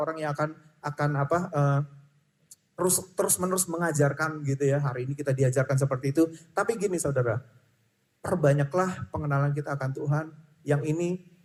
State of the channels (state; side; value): identical; both; correlation 1.00